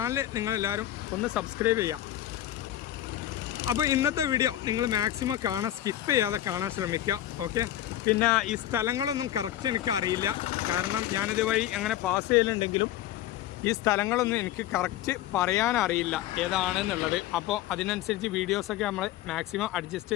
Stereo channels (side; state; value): right; quieter; 13.1 dB